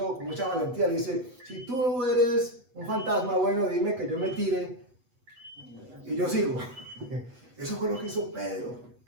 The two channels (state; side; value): late; left; 8.1 ms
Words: valentía, le dice: si tú eres un fantasma, bueno, dime que yo me tire y yo sigo. Eso fue lo que hizo Pedro.